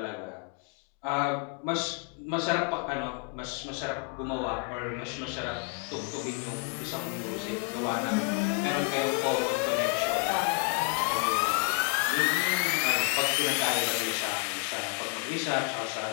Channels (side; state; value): right; quieter; 34.0 dB